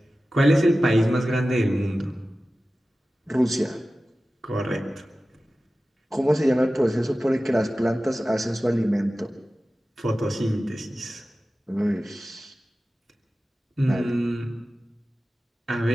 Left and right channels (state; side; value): normal; both; correlation 0.95